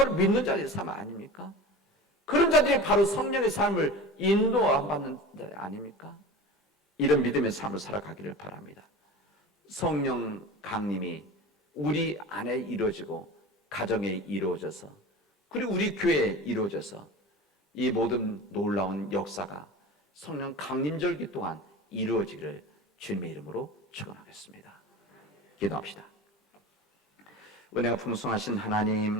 믿는 자들의 삶 아닙니까? 그런 자들이 바로 성령의 삶을 인도받는 자 아닙니까? 이런 믿음의 삶을 살아가기를 바랍니다. 성령 강림이 우리 안에 이루어지고 가정에 이루어져서, 그리고 우리 교회에 이루어져서 이 모든 놀라운 역사가 성령 강림절기 동안 이루어지기를 주님의 이름으로 축원하겠습니다. 기도합시다. 은혜가 풍성하신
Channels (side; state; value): both; normal; correlation 0.34